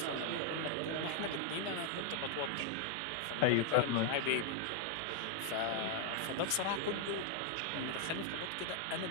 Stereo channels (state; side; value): different; both; correlation 0.00